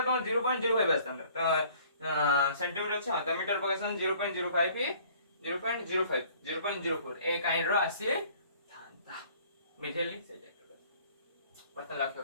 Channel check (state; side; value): inverted; both; correlation -0.55